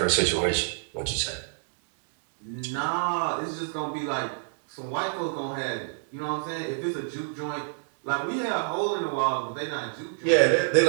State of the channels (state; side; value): silent; left; digital silence